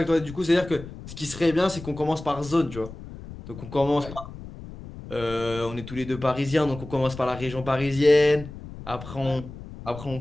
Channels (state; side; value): noise; left; rumble, 13 dB below the sound